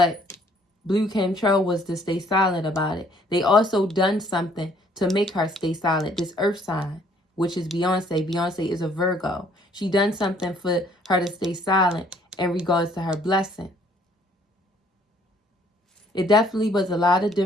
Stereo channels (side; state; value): both; normal; correlation 0.62